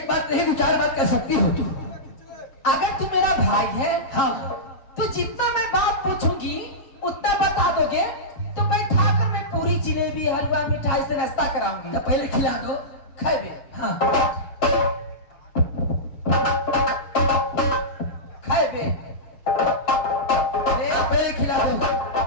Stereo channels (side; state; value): right; late; 7.4 ms